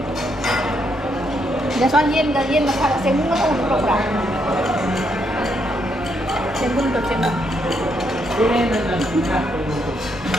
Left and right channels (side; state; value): both; normal; correlation 0.76